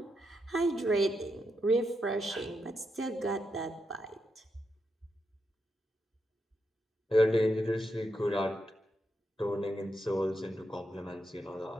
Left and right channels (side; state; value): both; normal; correlation 0.84